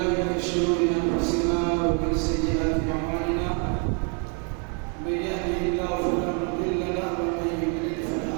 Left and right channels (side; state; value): left; quieter; 39.2 dB